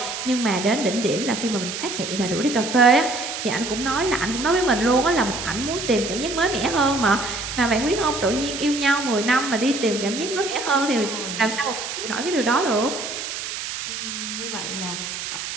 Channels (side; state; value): right; noise; hiss, 6 dB below the sound